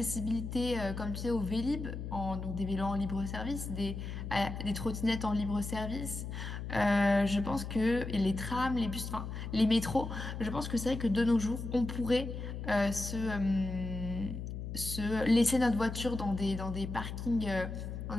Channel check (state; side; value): noise; left; hum, 6 dB below the sound